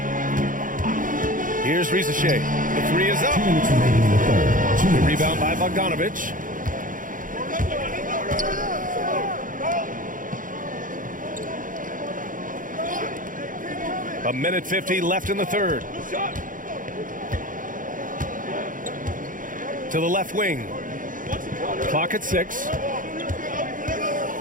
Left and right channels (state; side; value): late; left; 0.39 ms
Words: Here's Rizachet. The three is up. The rebound by Bogdanovic. A minute 50 left in the third. To the left wing. Clock at 6.